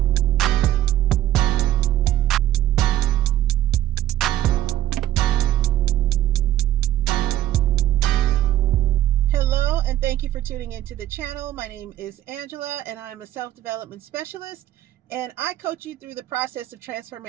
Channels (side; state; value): left; quieter; 13.1 dB